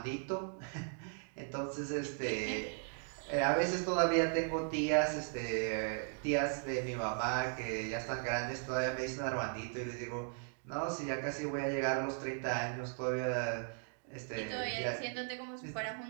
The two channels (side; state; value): left; silent; 53 dB below the other